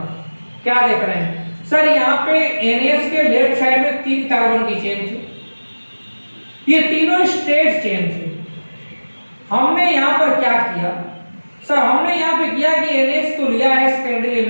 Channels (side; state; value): both; inverted; correlation -1.00